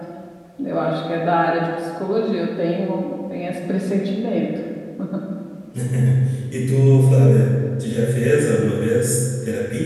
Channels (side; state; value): both; identical; correlation 1.00